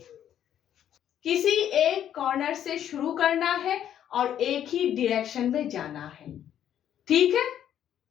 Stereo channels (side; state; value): right; quieter; 10.3 dB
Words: किसी एक कॉर्नर से शुरू करना है और एक ही डायरेक्शन में जाना है। ठीक है,